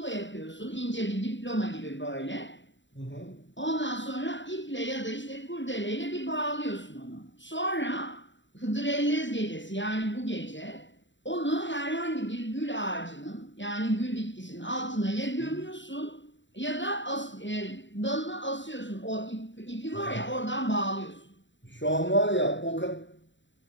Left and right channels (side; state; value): right; late; 0.54 ms